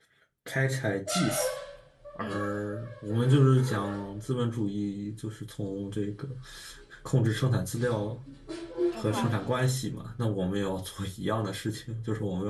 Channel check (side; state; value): both; identical; correlation 1.00